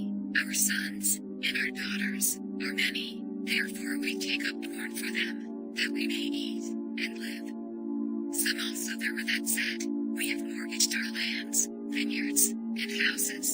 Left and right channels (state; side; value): identical; both; correlation 1.00